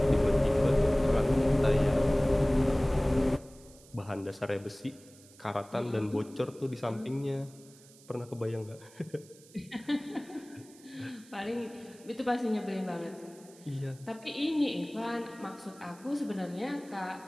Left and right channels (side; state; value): right; noise; hiss, 24 dB below the sound